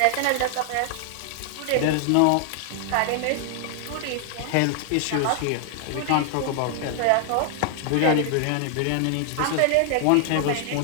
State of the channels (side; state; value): both; different; correlation 0.00